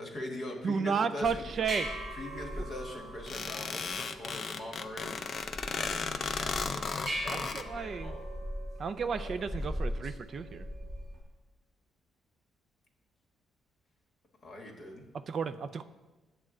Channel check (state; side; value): normal; both; correlation 0.77